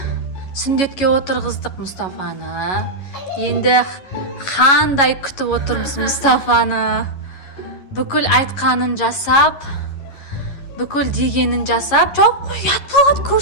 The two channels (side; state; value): right; late; 11 ms